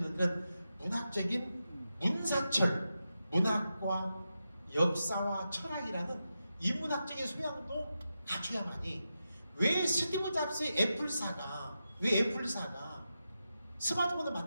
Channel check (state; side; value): inverted; both; correlation -0.89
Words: 그런 문학적인 문사철, 문학과 역사와 철학이라는 인문학적인 소양도 갖춰야만이 왜 스티브 잡스의 애플사가 스마트폰을